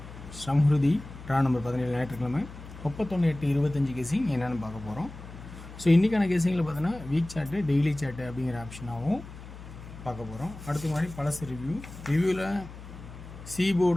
Samhruthi draw number 17 ஞாயிற்றுக்கிழமை 31/8/25 கேசிங் என்னென்னு பார்க்க போகிறோம். ஸோ இன்றைக்கான கேசிங்கில் பார்த்தோன்னா வீக் சார்ட்டு டெய்லி சார்ட்டு அப்படிங்கிற ஆப்ஷனாகவும் பார்க்க போகிறோம். அடுத்த மாதிரி பழசு ரிவ்யூவில் சி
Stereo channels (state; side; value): noise; left; hum, 14 dB below the sound